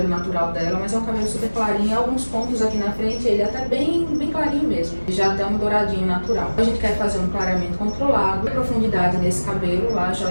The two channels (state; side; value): inverted; both; correlation -1.00